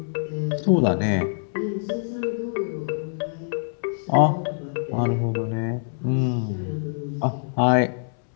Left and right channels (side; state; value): right; silent; 62 dB below the other